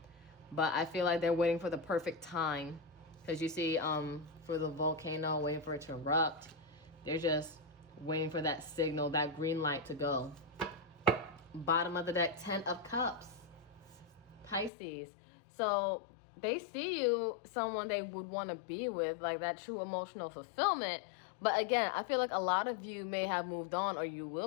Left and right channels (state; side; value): drops out; right; at 14.7 s